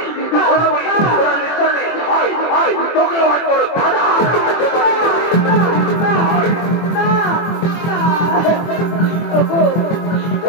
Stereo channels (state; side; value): late; right; 24 ms